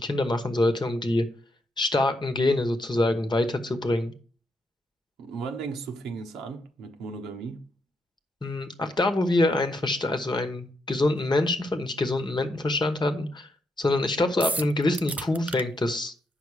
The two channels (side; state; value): both; normal; correlation 0.79